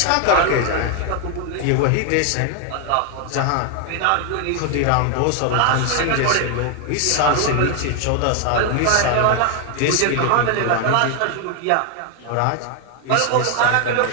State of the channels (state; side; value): different; both; correlation 0.01